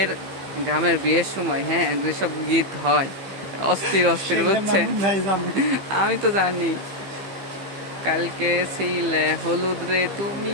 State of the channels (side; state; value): left; late; 15 ms